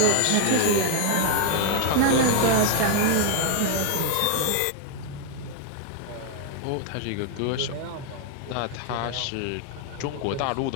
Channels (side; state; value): both; different; correlation 0.01